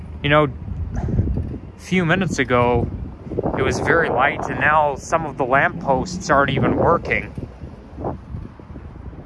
You know, a few minutes ago, it was very light, and now some of the lampposts aren't even working.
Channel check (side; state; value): both; identical; correlation 1.00